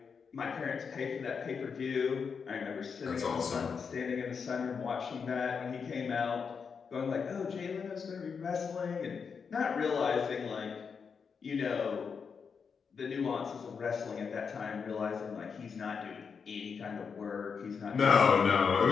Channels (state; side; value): quieter; right; 6.0 dB